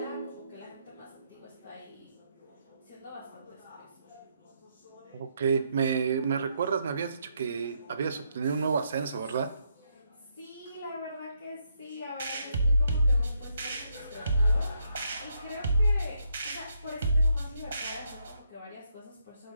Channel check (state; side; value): inverted; both; correlation -0.78